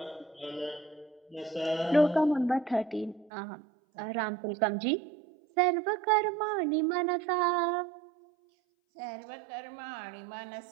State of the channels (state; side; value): drops out; left; at 3.3 s